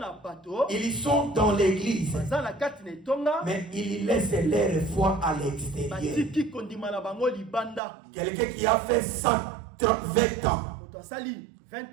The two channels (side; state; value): left; drops out; at 7.8 s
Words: bato ils sont dans l'église, baza na kati na etonga mais ils laissent leur foi à l'extérieur. batiki kondima na bango libanda Quelqu'un qui a fait 120 ans, moto asali